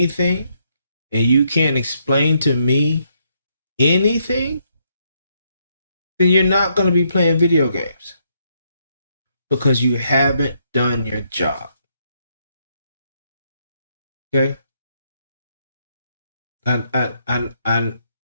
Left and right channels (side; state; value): both; inverted; correlation -0.75